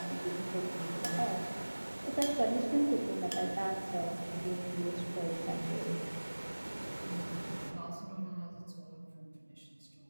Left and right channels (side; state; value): both; inverted; correlation -1.00